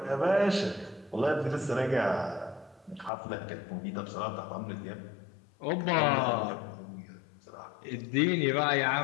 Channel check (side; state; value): right; drops out; at 3.1 s